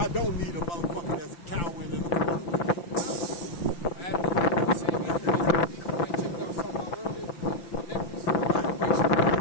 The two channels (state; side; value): late; right; 5.9 ms